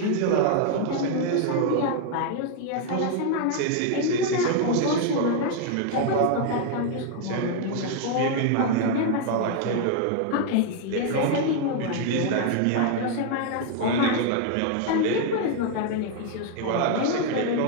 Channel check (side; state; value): both; different; correlation 0.00